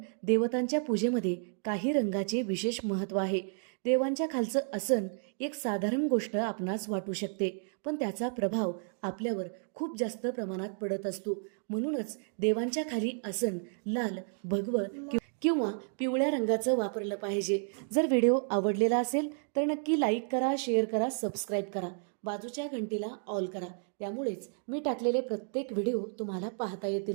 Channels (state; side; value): silent; left; 56 dB below the other